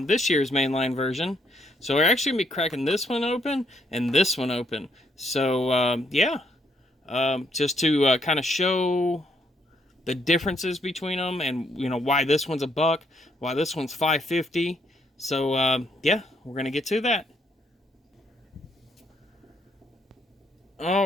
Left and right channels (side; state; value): both; normal; correlation 0.72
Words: year's mainline version. So we're actually going to be cracking this one open and this one open. So, yeah. Just to kind of show the differences between them and, you know, why this one's $1, why this one's $5.50. So, yeah, we're going to get to that.